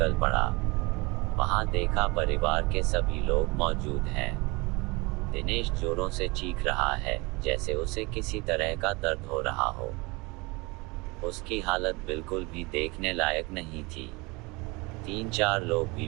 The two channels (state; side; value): quieter; left; 25.9 dB